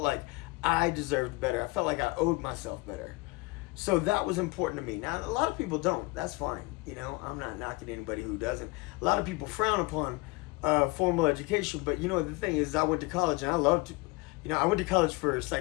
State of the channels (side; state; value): right; quieter; 23.7 dB